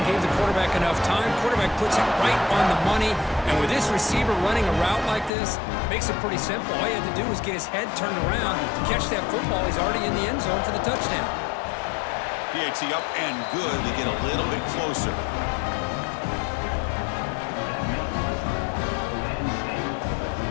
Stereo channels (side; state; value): right; drops out; at 5.3 s